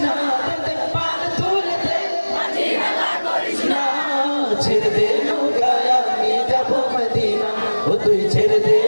না দে পান তুলে দে মাঝি হেলা করিস না। ছেড়ে দে নৌকায় আমি যাব মদিনা ও তুই ছেড়ে দে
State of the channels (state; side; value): inverted; both; correlation -1.00